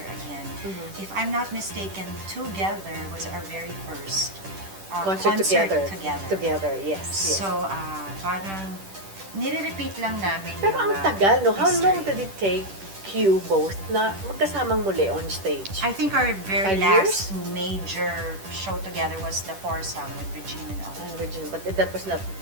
again. If I'm not mistaken, Together was our very first Concert together. together. Yes. Yes. So, parang nire-repeat lang namin Pero yung, ang tagal, no? How history. long did it take you both na magkasamang muli on stage? I think our very 5 last major show together was the foursome with Regina and all. Regina, but that was not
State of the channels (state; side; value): late; left; 10 ms